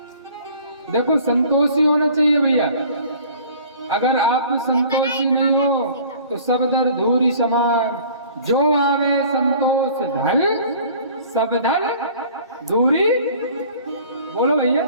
देखो संतोषी होना चाहिए भैया, अगर आप संतोषी नहीं हो तो सब दर धूरी समान। जो आवे संतोष धन, सब धन धूरी। बोलो भैया,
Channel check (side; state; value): both; inverted; correlation -0.49